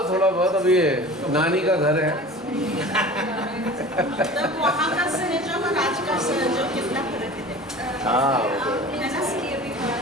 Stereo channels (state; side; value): normal; both; correlation 0.39